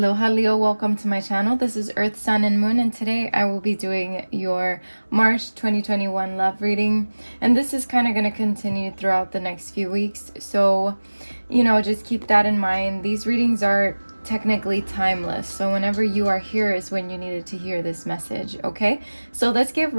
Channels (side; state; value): both; inverted; correlation -1.00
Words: Leo, welcome to my channel. This is Earth, Sun, and Moon, and today I will be doing your March 2021 love reading. And this is kind of going to continue throughout the next few weeks. So, just keep that in mind. These readings are technically timeless. So whenever you are here is when you needed to hear this message, okay? So let's get